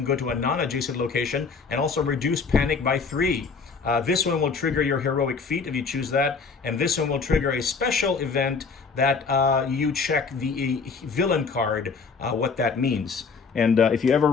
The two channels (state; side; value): quieter; right; 5.1 dB